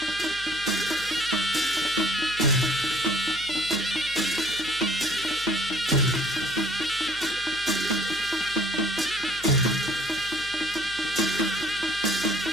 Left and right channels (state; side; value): noise; left; hum, 20 dB below the sound